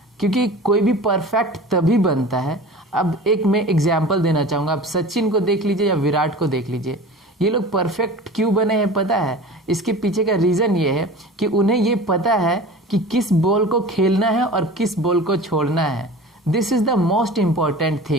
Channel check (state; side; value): normal; both; correlation 0.37